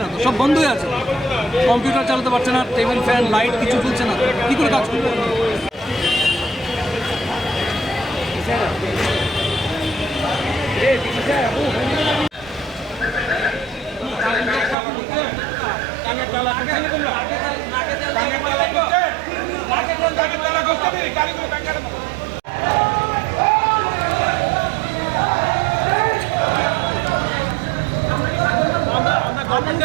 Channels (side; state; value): left; drops out; at 14.8 s